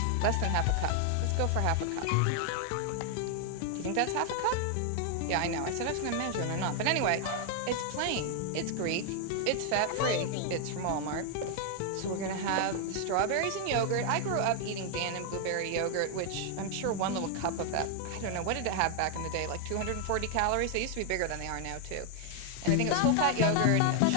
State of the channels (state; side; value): different; both; correlation 0.00